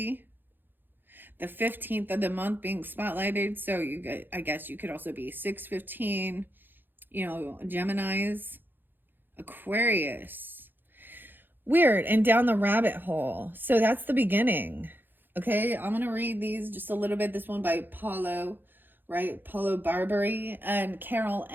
The 15th of the month being spotlighted. So I guess you could also be 615, you know, Geminis, Aquarius. Weird. And down the rabbit hole. So that's the beginning. Okay, I'm going to read these just a little bit. This one by Paulo, right? Paulo Barbary and Carol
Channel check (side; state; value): left; late; 0.095 ms